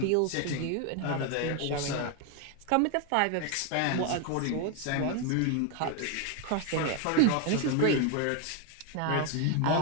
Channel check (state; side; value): different; both; correlation 0.01